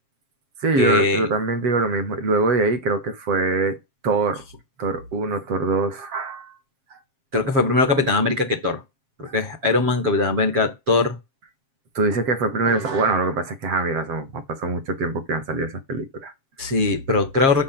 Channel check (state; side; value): late; left; 7.5 ms